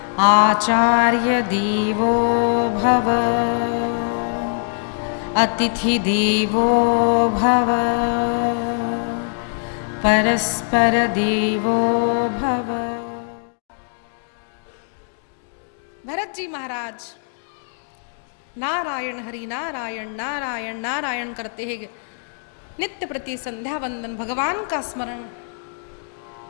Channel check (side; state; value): right; silent; 58 dB below the other